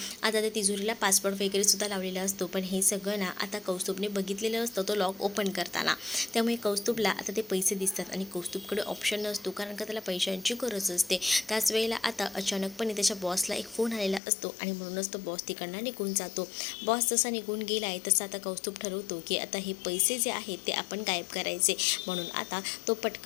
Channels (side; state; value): right; drops out; at 14.2 s